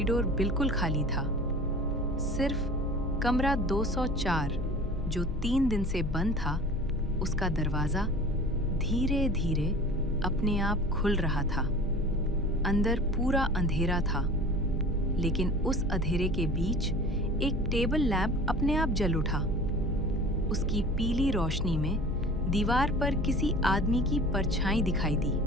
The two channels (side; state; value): both; normal; correlation 0.41